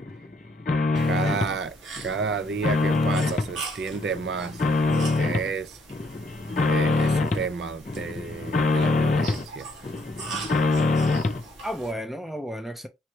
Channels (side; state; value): both; normal; correlation 0.69